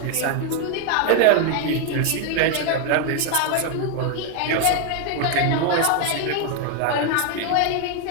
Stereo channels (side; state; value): both; different; correlation 0.00